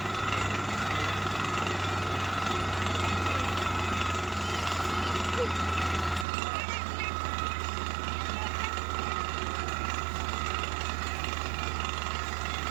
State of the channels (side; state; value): left; drops out; at 6.2 s